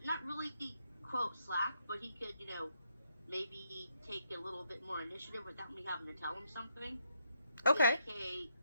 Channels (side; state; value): both; inverted; correlation -0.77